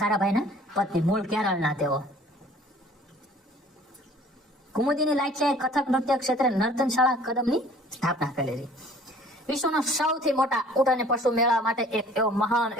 સારાભાઈના પત્ની, મૂળ કેરળના તેઓ. કુમુદિની લાખિયાએ કથક નૃત્ય ક્ષેત્રે નર્તનશાળા કદમની સ્થાપના કરેલી. વિશ્વનો સૌથી મોટા ઊંટ અને પશુ મેળા માટે એક એવો મહાન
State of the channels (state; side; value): normal; both; correlation 0.52